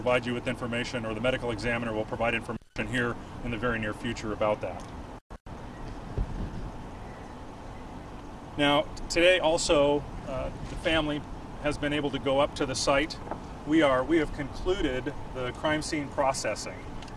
you with information, or the medical examiner will provide information here in the very near future about that. Now, today also, the family has been able to go up to the site. We have concluded the crime scene processing.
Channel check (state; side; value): identical; both; correlation 1.00